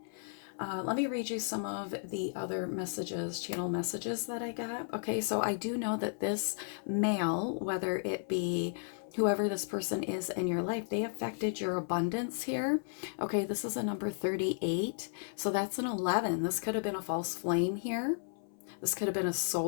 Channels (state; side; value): silent; right; 55 dB below the other